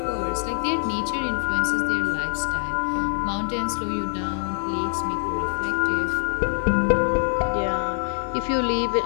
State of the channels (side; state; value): right; silent; digital silence